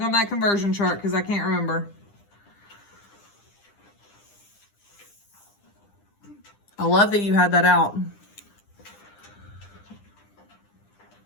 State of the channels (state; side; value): late; right; 9.9 ms